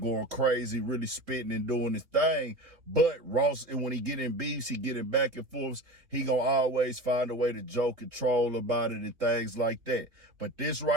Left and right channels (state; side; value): late; left; 2.9 ms